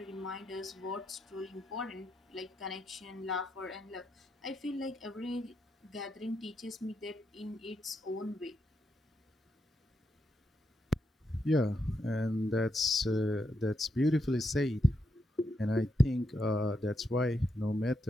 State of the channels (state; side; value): normal; both; correlation 0.82